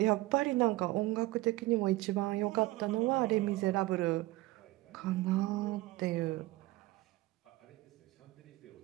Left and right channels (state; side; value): quieter; left; 18.9 dB